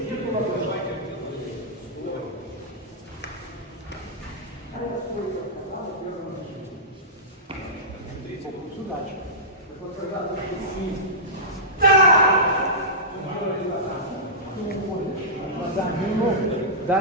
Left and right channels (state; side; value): normal; both; correlation -0.15